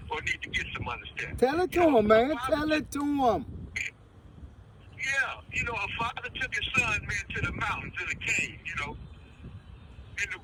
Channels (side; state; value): both; identical; correlation 1.00